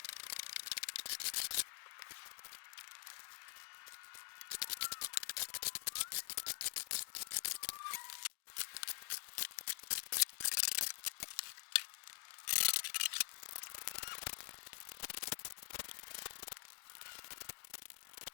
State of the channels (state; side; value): silent; right; digital silence